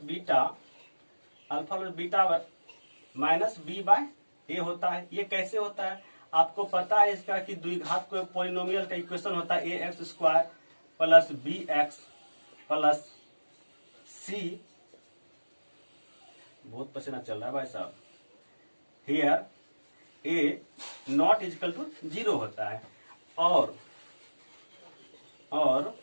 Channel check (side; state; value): both; inverted; correlation -1.00